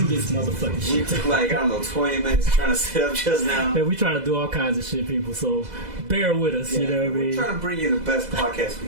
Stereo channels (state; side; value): late; left; 2.0 ms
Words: this motherfucking shit. We took like, 20 minutes trying to set up just now. Man, we trying to do all kinds of shit, people. So bear with us. You know what I mean? We're trying to bring you the best podcast